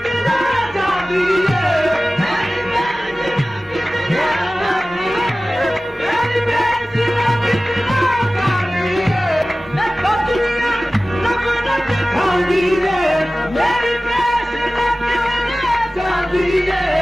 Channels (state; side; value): normal; both; correlation 0.97